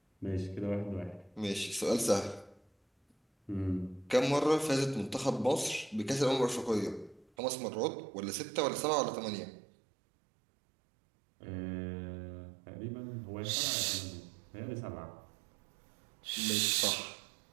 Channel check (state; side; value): drops out; left; at 7.2 s